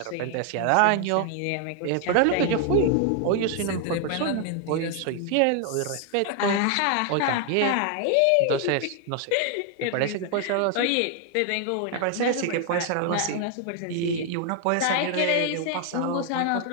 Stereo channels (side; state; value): both; different; correlation 0.00